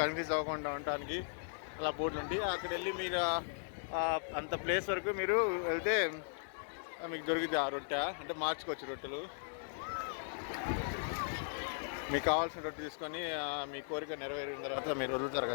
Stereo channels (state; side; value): silent; right; digital silence